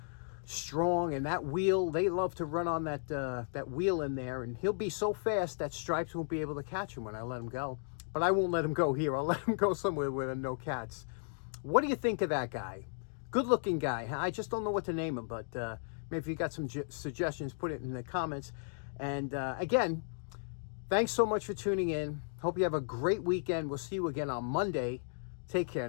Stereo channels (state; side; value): silent; right; digital silence